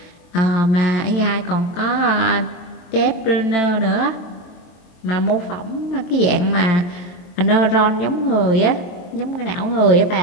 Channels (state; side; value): late; right; 23 ms